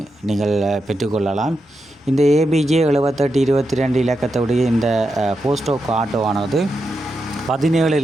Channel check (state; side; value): normal; both; correlation 0.87